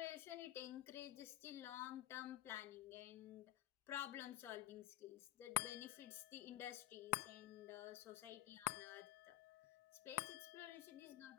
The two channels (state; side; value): quieter; right; 14.8 dB